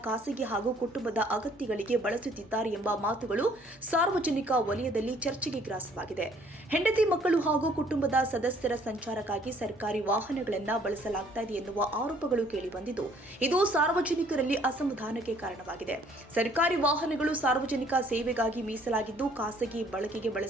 ಖಾಸಗಿ ಹಾಗೂ ಕುಟುಂಬದ ಅಗತ್ಯಗಳಿಗೆ ಬಳಸುತ್ತಿದ್ದಾರೆ ಎಂಬ ಮಾತುಗಳು ಸಾರ್ವಜನಿಕ ವಲಯದಲ್ಲಿ ಚರ್ಚೆಗೆ ಗ್ರಾಸವಾಗಿದೆ. ಹೆಂಡತಿ ಮಕ್ಕಳು ಹಾಗೂ ಕುಟುಂಬದ ಸದಸ್ಯರ ಸಂಚಾರಕ್ಕಾಗಿ ಸರ್ಕಾರಿ ವಾಹನಗಳನ್ನು ಬಳಸಲಾಗ್ತಾ ಇದೆ ಎನ್ನುವ ಆರೋಪಗಳು ಕೇಳಿಬಂದಿದ್ದು, ಇದು ಸಾರ್ವಜನಿಕರಲ್ಲಿ ಅಸಮಾಧಾನಕ್ಕೆ ಕಾರಣವಾಗಿದೆ. ಸರ್ಕಾರಿ ವಾಹನಗಳು ಸಾರ್ವಜನಿಕ ಸೇವೆಗಾಗಿ ಮೀಸಲಾಗಿದ್ದು, ಖಾಸಗಿ ಬಳಕೆಗೆ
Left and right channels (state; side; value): normal; both; correlation 0.60